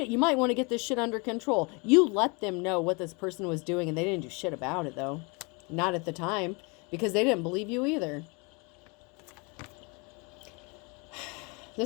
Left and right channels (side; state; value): right; quieter; 30.4 dB